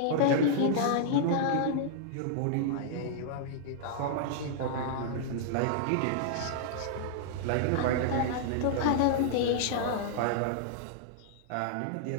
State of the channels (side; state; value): both; different; correlation -0.02